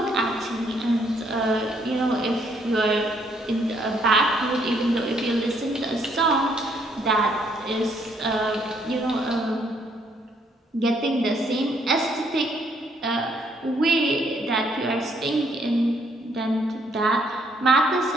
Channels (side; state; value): both; normal; correlation 0.69